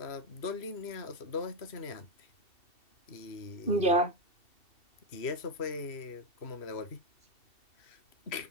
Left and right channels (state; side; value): late; right; 2.7 ms